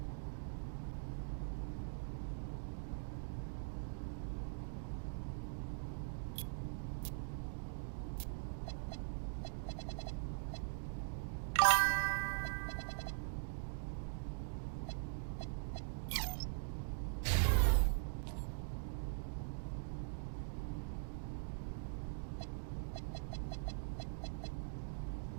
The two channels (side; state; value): left; silent; digital silence